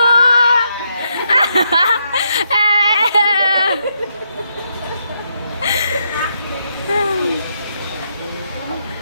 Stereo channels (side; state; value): both; inverted; correlation -0.79